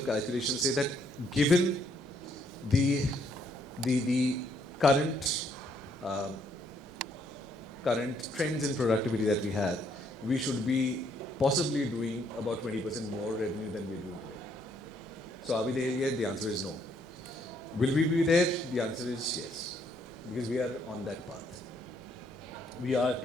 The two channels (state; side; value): normal; both; correlation 0.70